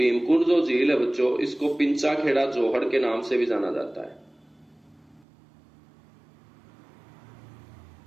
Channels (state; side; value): drops out; left; at 5.2 s